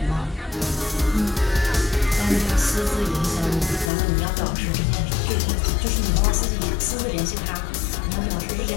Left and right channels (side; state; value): right; drops out; at 3.9 s